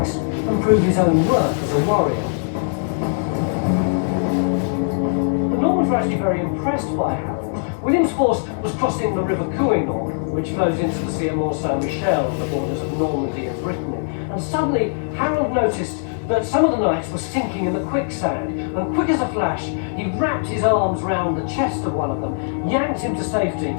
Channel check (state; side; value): silent; right; digital silence